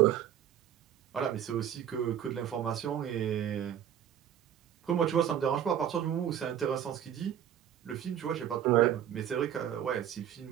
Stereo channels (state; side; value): quieter; left; 10.1 dB